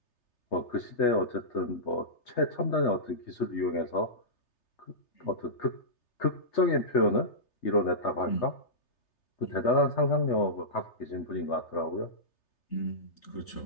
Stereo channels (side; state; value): right; late; 3.3 ms